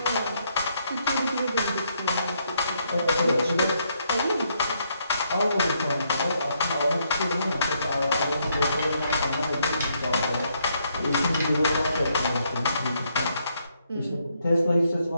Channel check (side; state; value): both; inverted; correlation -0.74